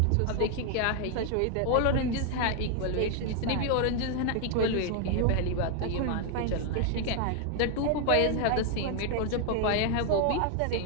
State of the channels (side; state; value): both; different; correlation 0.01